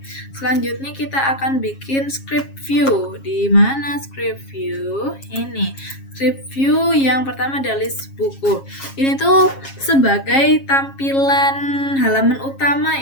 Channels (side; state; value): right; late; 7.4 ms